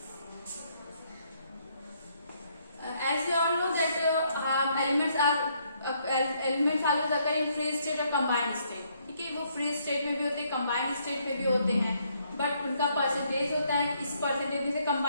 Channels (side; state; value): both; inverted; correlation -0.70